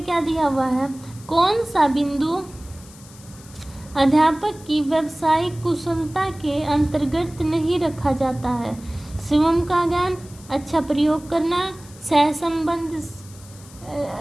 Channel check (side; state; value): left; noise; hiss, 22 dB below the sound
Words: क्या दिया हुआ है, कौन सा बिंदु अध्यापक की व्यावसायिक कुशलता के अंतर्गत नहीं रखा जाता है, स्वयं का ज्ञान, अच्छा प्रयोग करना, सहसंबंध